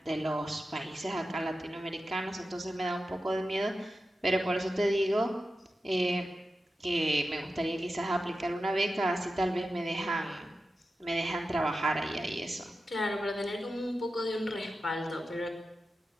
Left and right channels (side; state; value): both; normal; correlation 0.92